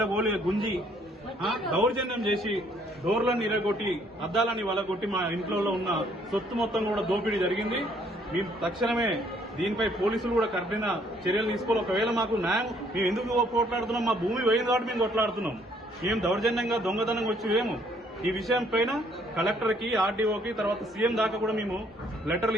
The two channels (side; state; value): both; normal; correlation 0.65